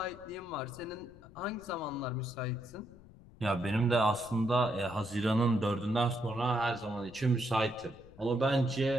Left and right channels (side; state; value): left; noise; rumble, 21 dB below the sound